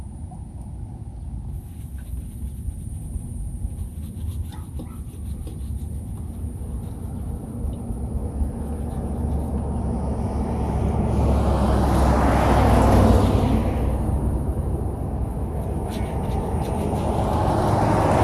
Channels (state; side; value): identical; both; correlation 1.00